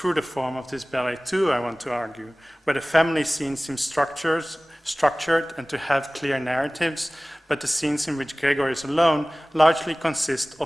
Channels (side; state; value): both; normal; correlation 0.98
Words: the form of this ballet too, I want to argue, where the family scenes seem structured and to have clear narratives, but the scenes in which Gregor is alone largely consist